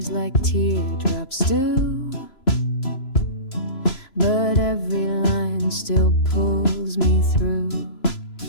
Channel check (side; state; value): right; late; 3.0 ms